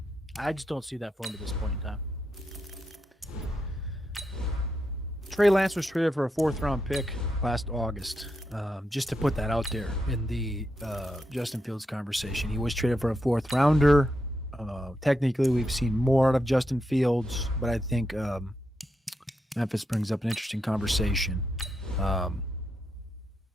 I just don't see that for him at this point in time. Trey Lance was traded for a 4th-round pick last August. Just to put that out there in the Justin Fields conversation, he was traded for a 4th-rounder. Technically, we've seen more out of Justin Fields, but I think Memphis brings up an interesting conversation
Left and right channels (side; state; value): both; normal; correlation 0.84